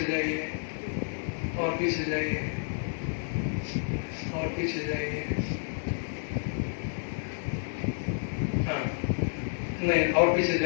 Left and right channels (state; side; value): silent; right; digital silence